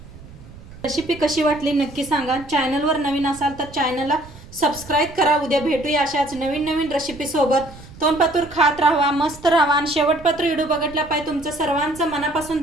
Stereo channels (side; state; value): right; noise; rumble, 18 dB below the sound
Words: रेसिपी कशी वाटली नक्की सांगा. चॅनलवर नवीन असाल तर चॅनलला सबस्क्राईब करा. उद्या भेटूया अशाच नवीन नवीन रेसिपी सोबत. तोंडपातूर खात राहा, मस्त राहा. आणि शेवटपात्र व्हिडिओ बघितला पाहिजे. तुमचं सर्वांचं मनापासून